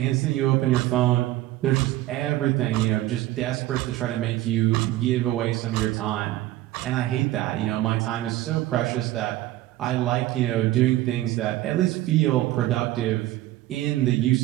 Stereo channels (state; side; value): quieter; left; 15.4 dB